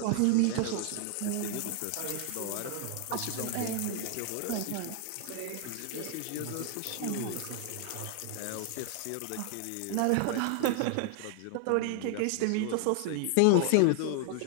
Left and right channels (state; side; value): different; both; correlation 0.00